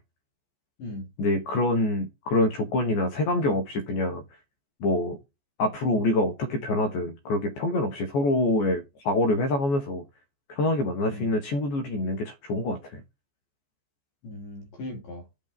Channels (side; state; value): right; late; 14 ms